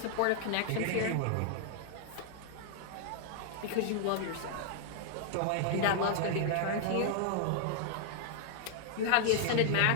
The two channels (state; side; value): different; both; correlation -0.01